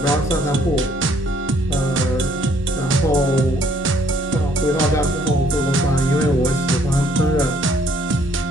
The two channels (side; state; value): both; normal; correlation 0.64